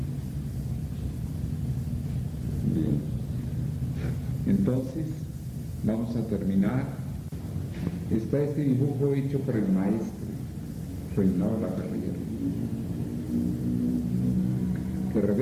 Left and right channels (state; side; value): identical; both; correlation 1.00